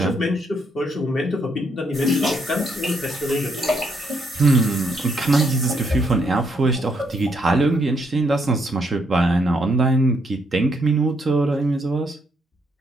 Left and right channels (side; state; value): both; normal; correlation 0.74